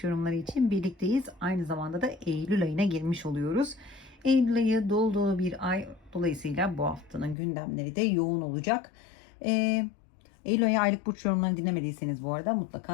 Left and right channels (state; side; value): drops out; right; at 7.4 s